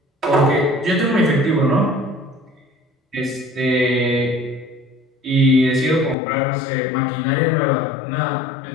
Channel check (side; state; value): right; drops out; at 6.2 s